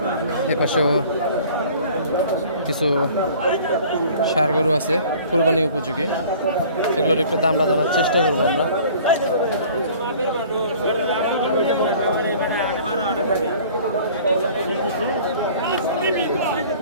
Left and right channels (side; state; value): both; inverted; correlation -0.49